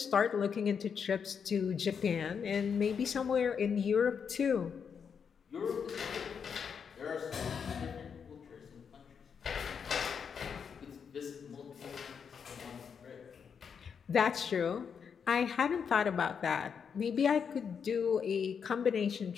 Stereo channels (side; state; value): right; quieter; 6.8 dB